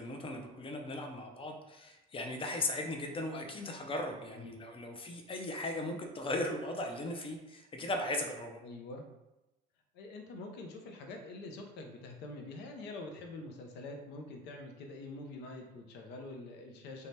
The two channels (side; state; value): both; normal; correlation 0.24